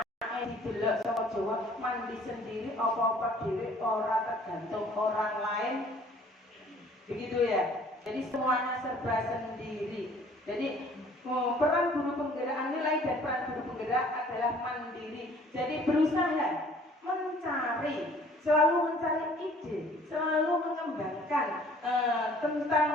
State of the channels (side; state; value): both; normal; correlation 0.55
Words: didelok sama Jawa, mandi sendiri apa-apa dhewe ora tergantung orang lain. Begitu ya. Jadi semuanya serba sendiri. Jadi peran guru penggerak, nilai dan peran guru penggerak adalah mandiri. Jadi berusaha selalu mencari ide, selalu mengembangkan